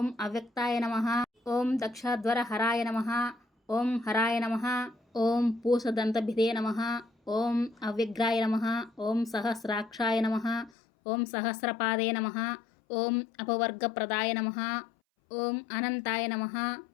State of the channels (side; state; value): right; drops out; at 10.7 s